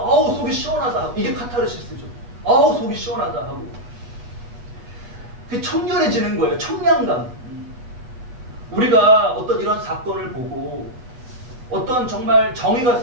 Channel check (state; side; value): late; left; 8.0 ms